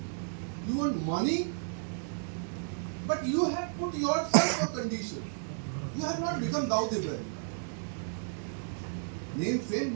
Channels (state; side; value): silent; left; digital silence